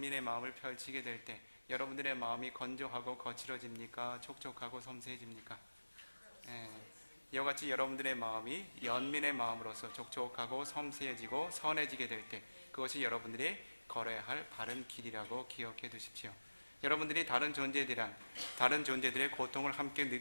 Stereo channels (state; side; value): inverted; both; correlation -1.00